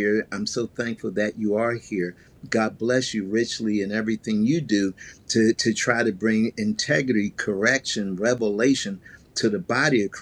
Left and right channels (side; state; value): both; identical; correlation 1.00